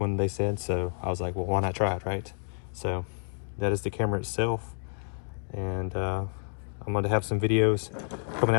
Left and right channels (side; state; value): right; silent; digital silence